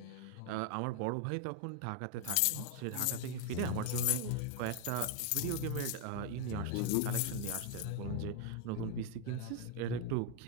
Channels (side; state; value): both; different; correlation 0.00